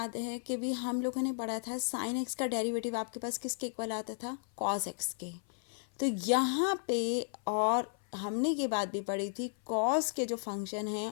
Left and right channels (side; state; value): right; silent; 55 dB below the other